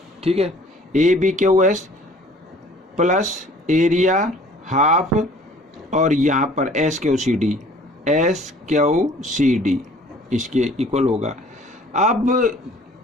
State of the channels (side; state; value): both; normal; correlation 0.52